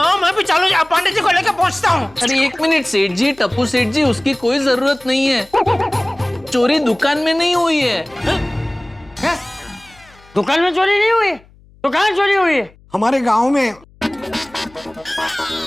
मैं भी चालू पांडे जी को लेकर पहुँचता हूँ। अरे एक मिनट सेठ जी, टप्पू सेठ जी, उसकी कोई जरूरत नहीं है। चोरी दुकान में नहीं हुई है। क्या? दुकान में चोरी नहीं हुई तो कहाँ चोरी हुई है? हमारे गांव में।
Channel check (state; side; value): noise; left; hum, 27 dB below the sound